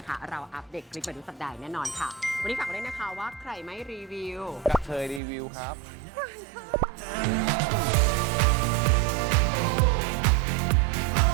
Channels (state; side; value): drops out; left; at 5.2 s